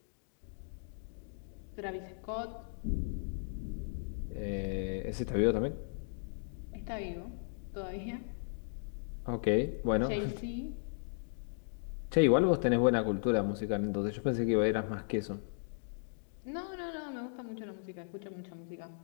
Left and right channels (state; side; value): silent; right; digital silence